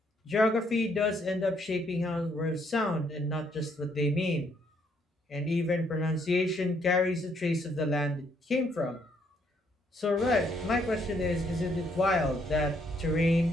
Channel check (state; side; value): normal; both; correlation 0.70